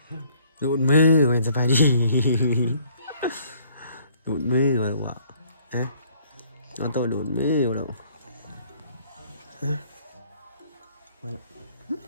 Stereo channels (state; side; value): inverted; both; correlation -0.61